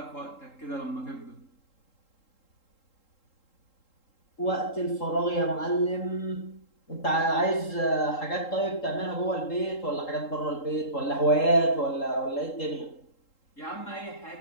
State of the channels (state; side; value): late; right; 3.8 ms